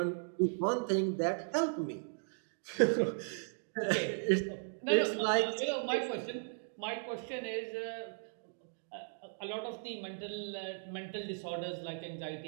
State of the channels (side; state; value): left; silent; digital silence